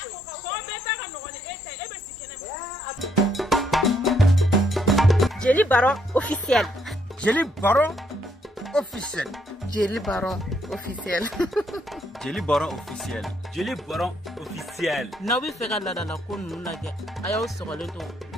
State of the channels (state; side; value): normal; both; correlation 0.72